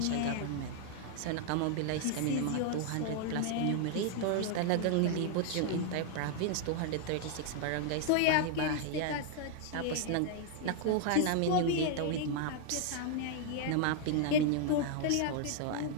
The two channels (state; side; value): different; both; correlation 0.00